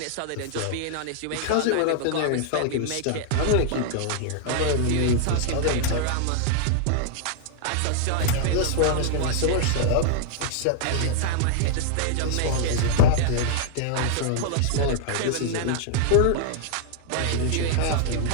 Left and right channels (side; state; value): both; different; correlation -0.01